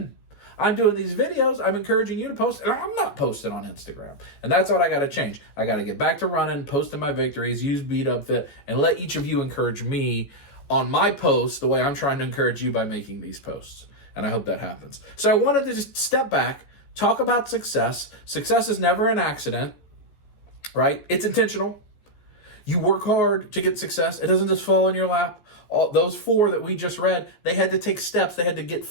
I'm doing these videos. I'm encouraging you to post. And I'm not posting on Instagram. And that's what I got to change. I got to get back to running, posting my victories, use bigdubfit, and let each of you encourage me on my posts the way I'm trying to encourage you by making these posts. And I hope that happens. So I wanted to just step back, talk about success. Success is never an accident, right? It's intentional. You work hard to get success. It doesn't just fall in your lap. All those 4 that we just read, they had to take steps. They had to get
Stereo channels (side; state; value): right; late; 14 ms